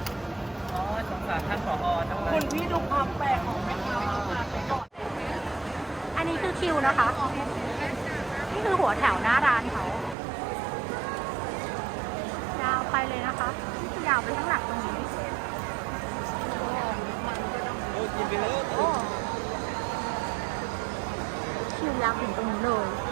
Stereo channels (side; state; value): left; drops out; at 10.2 s